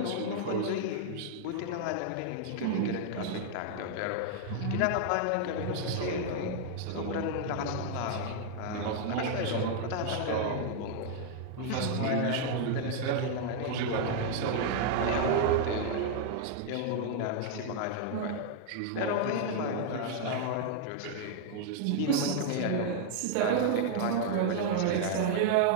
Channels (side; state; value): both; different; correlation -0.01